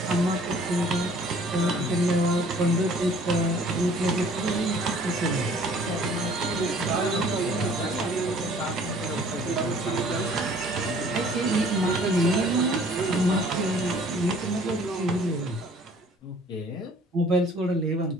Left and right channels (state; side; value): normal; both; correlation 0.54